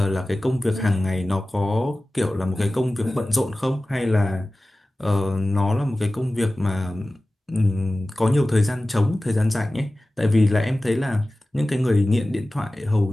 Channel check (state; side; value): normal; both; correlation 0.96